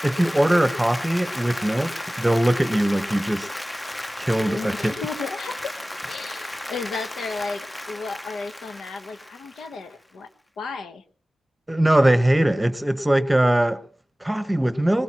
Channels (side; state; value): both; normal; correlation 0.97